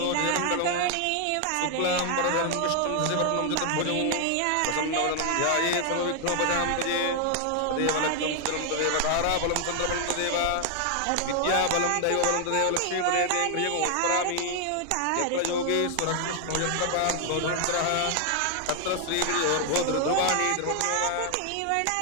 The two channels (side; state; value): both; different; correlation 0.00